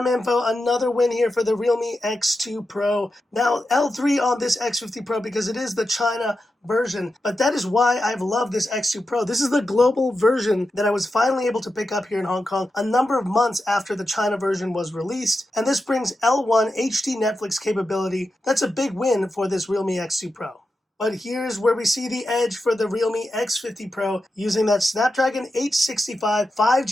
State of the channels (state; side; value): normal; both; correlation 0.89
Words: info, another win here for the Realme X2 Pro. Now, L3 on this X50 Pro because it is the China version, but that is why I've loved this X2 Pro. This is the global version that I was finally able to pick up here in Hong Kong a number of months after the China version was released, and this brings L1 HD Netflix capability. That's a big win for this Realme X2 Pro. But here's where we see the edge for the Realme X50 Pro using that Snapdragon 865